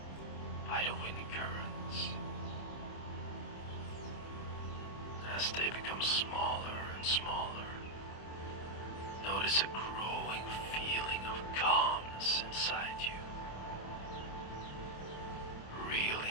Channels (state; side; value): late; right; 26 ms